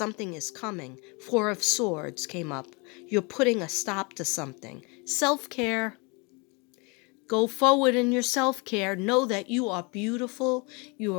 is coming. Four of Swords came up. You're putting a stop to something. Self-care. Go forward in your self-care. Know that you are beautiful.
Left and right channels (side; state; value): right; quieter; 30.0 dB